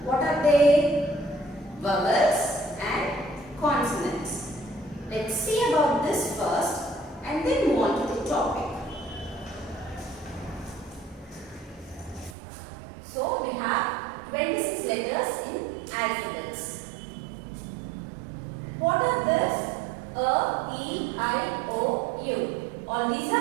What are they? Vowels and consonants. Let's see about this first and then move on to the topic. So we have 26 letters in alphabets. What are these? A, E, I, O, U. All these are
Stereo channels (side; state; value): left; drops out; at 12.4 s